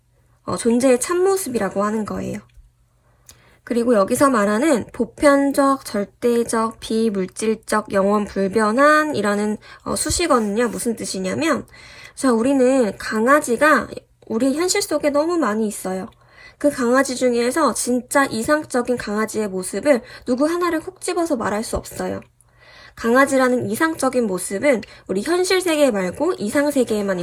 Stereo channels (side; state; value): both; identical; correlation 1.00